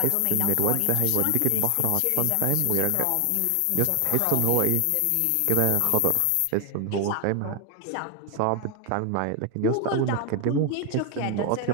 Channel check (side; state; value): both; different; correlation 0.01